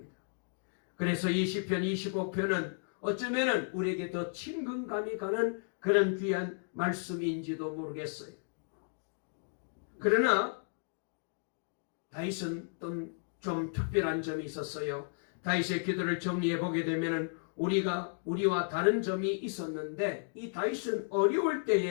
그래서 이 시편 25편은 어쩌면은 우리에게 더 친근감이 가는 그런 귀한 말씀인지도 모르겠어요. 그러나 다윗은 좀 특별한 점이 있었어요. 다윗의 기도를 정리해 보게 되면 우리와 다른 점이 있었는데 이 다윗은 어려울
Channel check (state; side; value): silent; right; digital silence